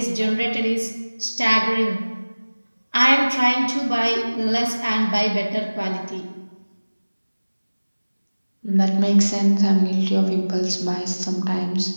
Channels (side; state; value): both; inverted; correlation -1.00